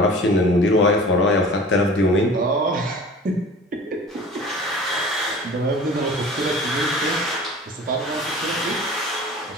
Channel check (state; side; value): normal; both; correlation 0.42